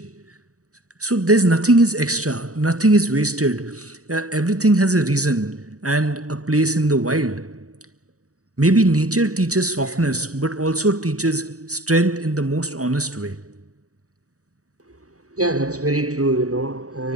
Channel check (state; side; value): late; left; 0.66 ms